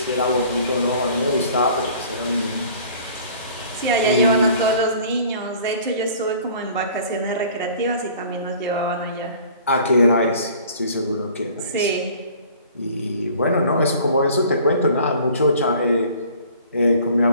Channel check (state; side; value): inverted; both; correlation -0.50